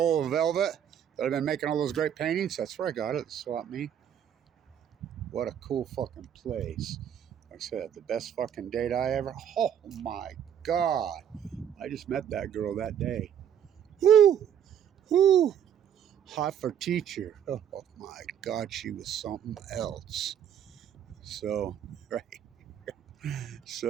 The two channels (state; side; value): quieter; left; 9.2 dB